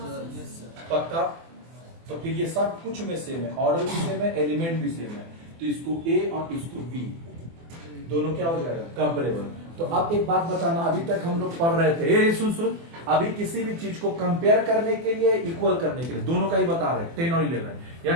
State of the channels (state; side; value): late; left; 24 ms